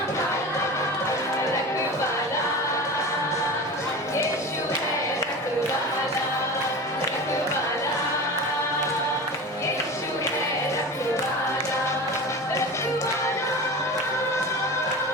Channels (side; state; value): both; normal; correlation 0.31